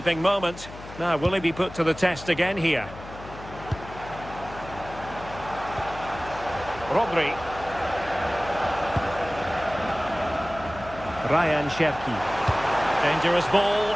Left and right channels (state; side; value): noise; left; hum, 15 dB below the sound